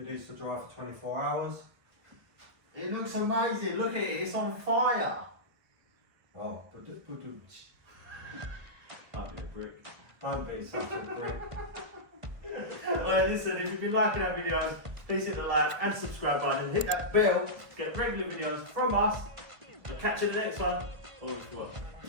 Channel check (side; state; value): left; late; 1.5 ms